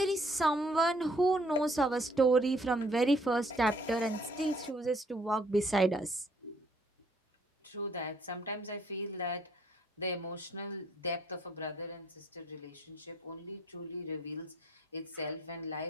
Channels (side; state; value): both; normal; correlation 0.64